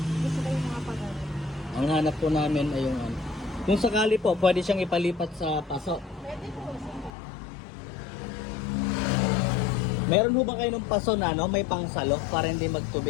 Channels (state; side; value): drops out; right; at 7.1 s